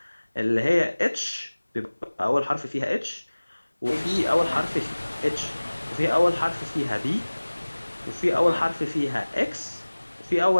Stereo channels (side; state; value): both; inverted; correlation -1.00